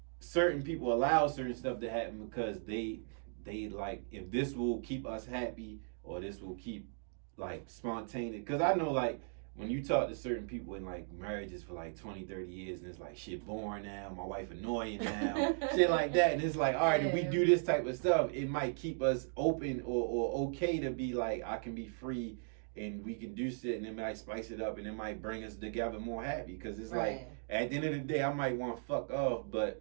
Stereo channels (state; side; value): silent; left; digital silence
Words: certain people allow certain stuff to happen because they like, if this will keep us happy or this will keep like spontaneous. Because I know like when you talk to certain people in like marriages for like 20, 30 years and it's like shit boring now, my wife annoying now, shit like that. And it's like, all right, if we do this type of stuff, it might keep us open or okay to be like, I can be free and we can do shit and it might spice it up and it might bring us together more happy. Because it's like, at the end of the day, I might want to fuck off, but